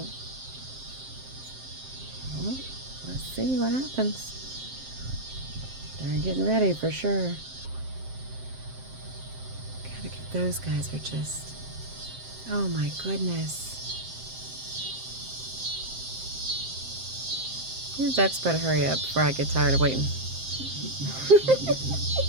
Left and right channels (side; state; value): left; late; 7.6 ms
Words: Well, let's see what happens. They're getting ready for sure. Gotta get those guys are just... Oh my goodness. These ducks better hurry up before I get tired of waiting.